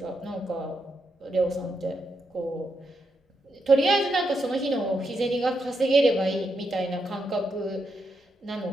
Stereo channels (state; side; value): normal; both; correlation 0.82